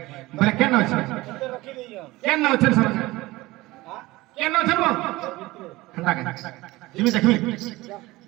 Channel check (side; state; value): left; quieter; 19.6 dB